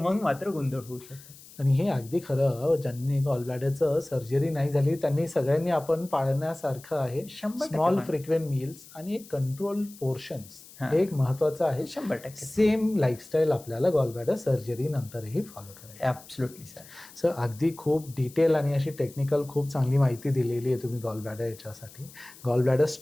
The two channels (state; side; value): noise; left; hiss, 20 dB below the sound